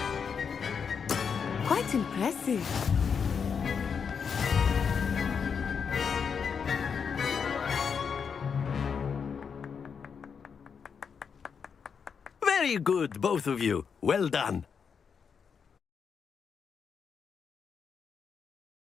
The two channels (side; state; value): right; quieter; 6.4 dB